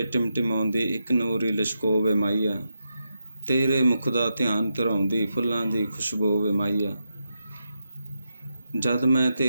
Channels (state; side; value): inverted; both; correlation -0.86